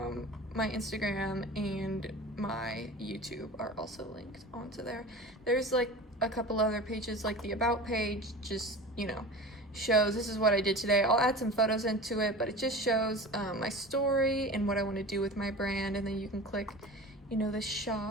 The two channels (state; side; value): normal; both; correlation 0.35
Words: my Instagram and my YouTube are also linked onto there. There's like a couple other pages, like the about page, just, you know, shows this is what I did today. I'll add some photos into it, but it just shows my story and what I want to do with my brand. And then you can click, you know, the